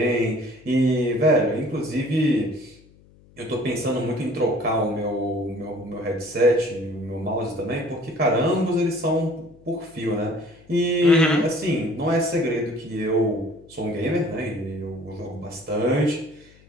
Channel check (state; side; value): noise; left; hum, 27 dB below the sound